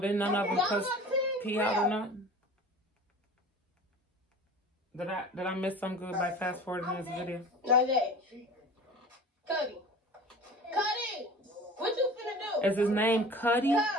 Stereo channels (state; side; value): normal; both; correlation 0.39